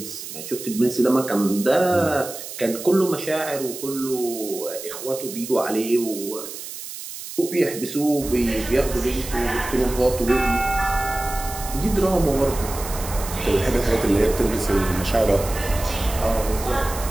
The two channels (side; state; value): right; noise; hiss, 10 dB below the sound